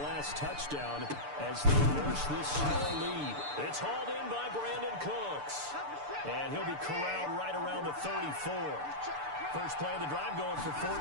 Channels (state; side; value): late; left; 6.8 ms